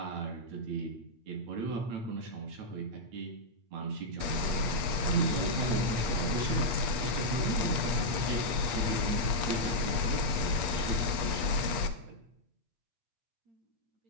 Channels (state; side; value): late; left; 8.3 ms